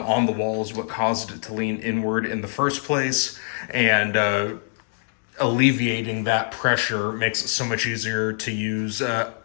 the wall is what caused it to lean inward in the first place. And alleviating that pressure makes it so much easier to use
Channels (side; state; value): right; silent; 61 dB below the other